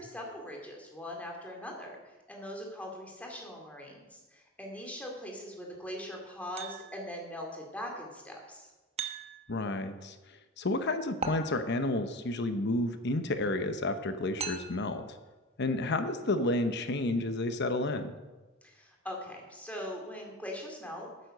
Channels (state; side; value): normal; both; correlation 0.29